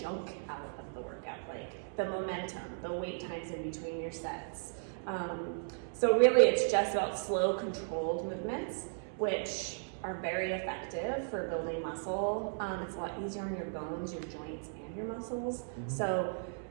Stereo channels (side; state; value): left; silent; digital silence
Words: out of the workout, like the momentum, the wait times in between your sets. So really it's just about slow, controlled movements, which are very effective for building muscle. It's a lot easier on your bones, your joints, and your muscles. Mm-hmm. So